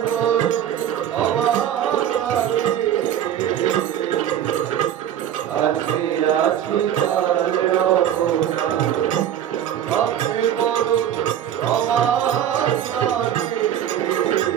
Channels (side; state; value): left; quieter; 10.3 dB